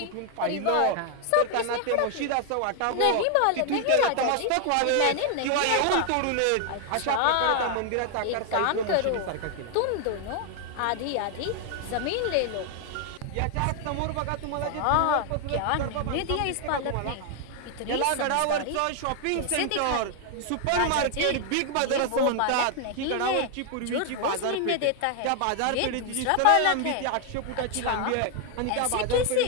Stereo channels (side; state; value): both; different; correlation 0.00